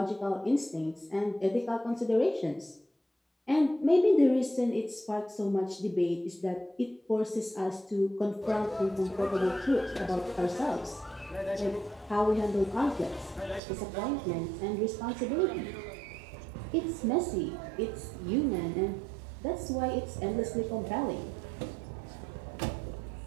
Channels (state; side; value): drops out; left; at 13.6 s